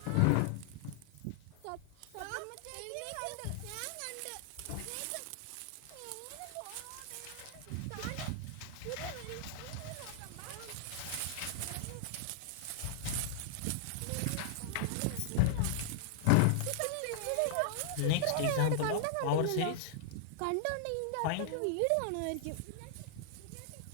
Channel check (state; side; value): different; both; correlation -0.01